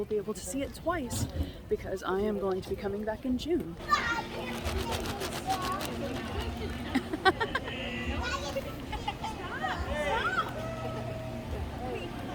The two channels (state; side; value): identical; both; correlation 1.00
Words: be able to see it twice because I am going to be coming back in June.